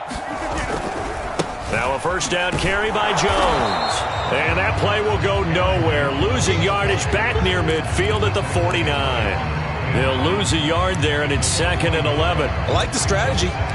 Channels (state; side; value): identical; both; correlation 1.00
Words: Now a first down carry by Jones. And that play will go nowhere. Losing yardage back near midfield at the 49. They'll lose a yard there, and it's 2nd and 11. I like the strategy.